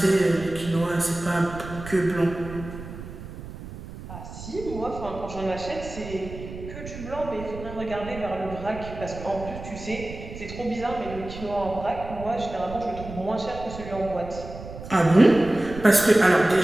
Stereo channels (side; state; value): right; noise; rumble, 12 dB below the sound